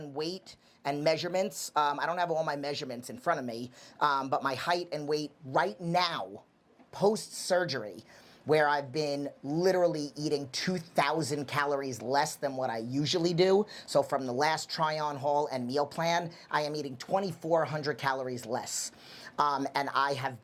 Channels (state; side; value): identical; both; correlation 1.00